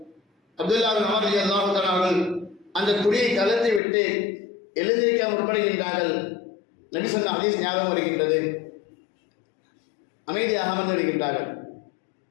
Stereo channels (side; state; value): right; drops out; at 3.8 s